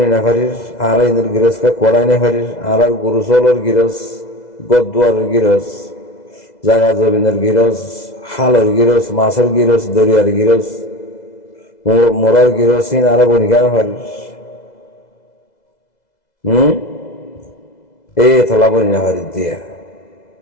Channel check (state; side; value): late; right; 2.0 ms